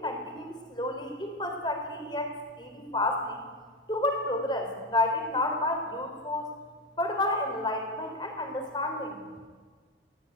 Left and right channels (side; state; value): both; normal; correlation 0.12